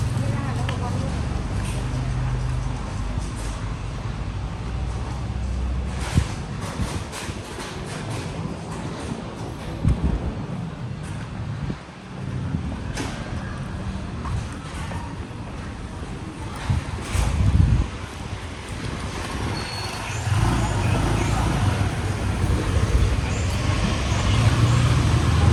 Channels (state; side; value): identical; both; correlation 1.00